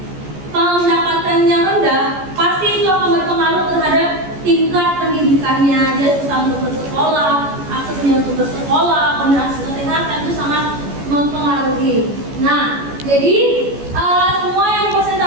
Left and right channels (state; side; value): late; left; 14 ms